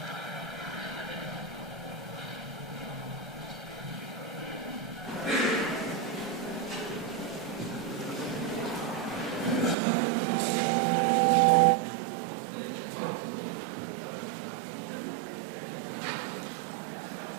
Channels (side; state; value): left; drops out; at 9.8 s